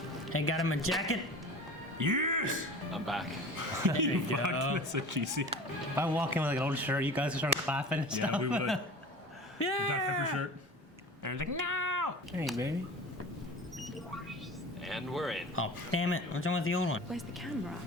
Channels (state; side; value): normal; both; correlation 0.37